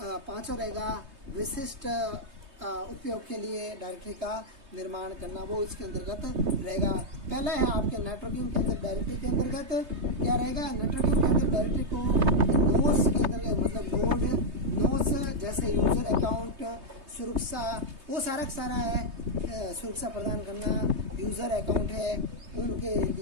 रहेगा विशिष्ट उपयोग के लिए डायरेक्टरी का निर्माण करना, वो इसके अंतर्गत रहेगा। पहला है आपके नेटवर्किंग के अंदर डायरेक्टरी के अंतर्गत क्या रहेगा, नेटवर्किंग के अंदर डायरेक्टरी को नोड्स के अंतर्गत मतलब नोड्स जैसे यूजर अकाउंट सुरक्षा, वो सारा है सुरक्षा प्रदान करना। यूजर अकाउंट है उनके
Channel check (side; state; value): left; late; 3.2 ms